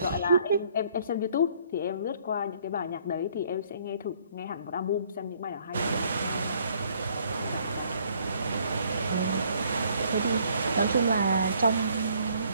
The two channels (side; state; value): both; inverted; correlation -0.63